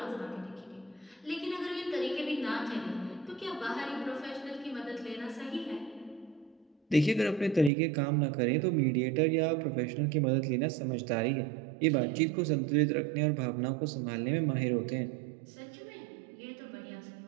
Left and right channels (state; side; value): drops out; left; at 7.7 s